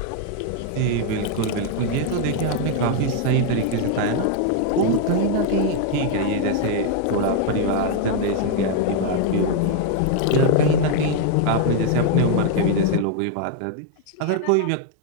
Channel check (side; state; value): both; different; correlation 0.00